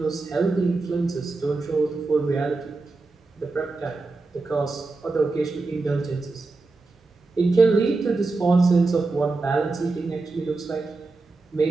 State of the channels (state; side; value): quieter; left; 3.6 dB